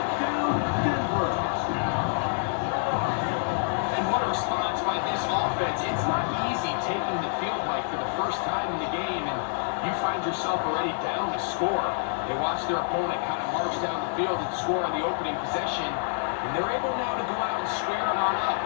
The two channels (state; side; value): silent; right; digital silence